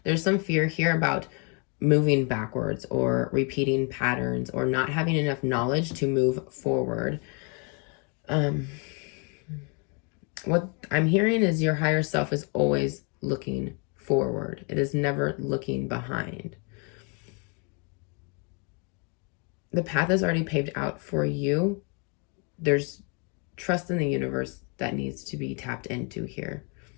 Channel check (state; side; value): quieter; right; 35.3 dB